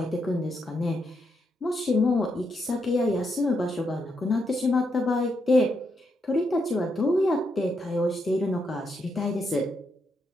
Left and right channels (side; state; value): both; normal; correlation 0.80